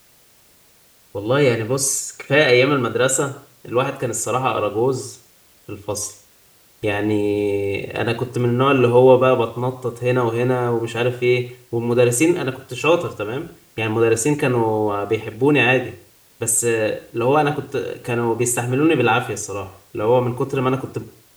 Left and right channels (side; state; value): both; identical; correlation 1.00